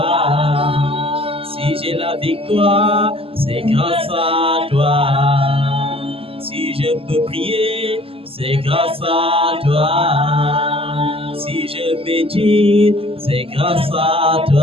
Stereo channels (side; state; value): left; late; 0.27 ms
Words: Si j'ai la victoire, c'est grâce à toi. Si je peux prier, c'est grâce à toi. Si je médite, c'est grâce à